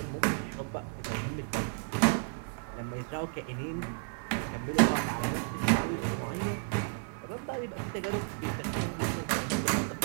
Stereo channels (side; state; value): left; silent; digital silence